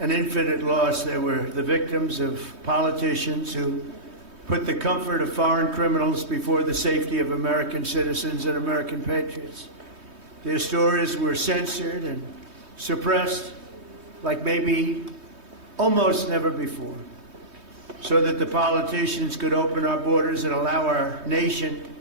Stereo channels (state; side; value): late; left; 3.2 ms